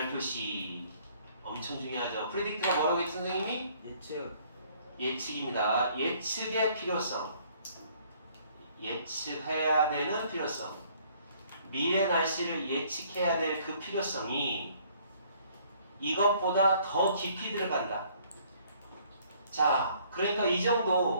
엄청 중요하죠. predict가 뭐라고 했지 선생님이? 예측. 예측입니다. 예측의 필요성. 예측해야 되는 필요성. 미래 날씨를 예측해야 될 그 필요성이 이것보다 더 깊이 들어간다. 자, 그러니까 이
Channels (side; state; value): both; inverted; correlation -0.61